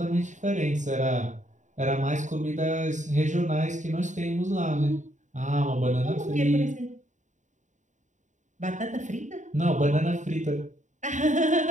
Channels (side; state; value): left; late; 0.35 ms